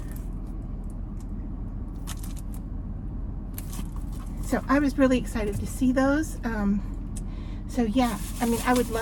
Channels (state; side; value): identical; both; correlation 1.00